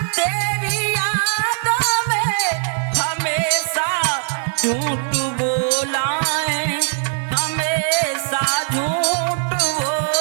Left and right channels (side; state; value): left; silent; 65 dB below the other